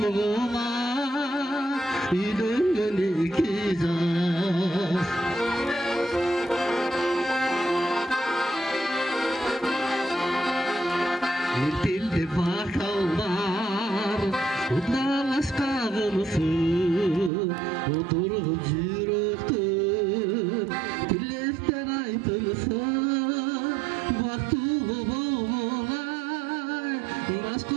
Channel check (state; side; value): drops out; left; at 17.3 s